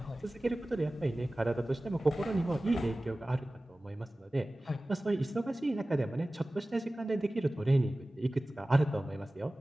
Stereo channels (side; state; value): both; normal; correlation 0.97